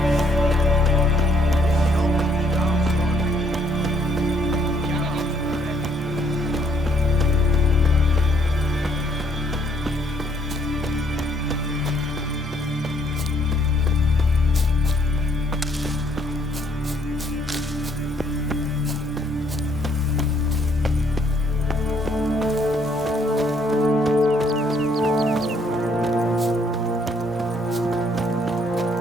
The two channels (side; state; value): both; normal; correlation 0.67